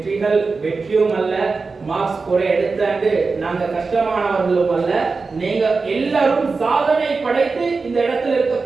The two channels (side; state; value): left; quieter; 4.3 dB